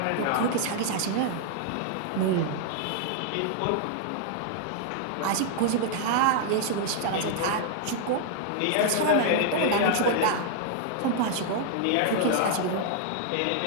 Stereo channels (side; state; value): both; different; correlation -0.01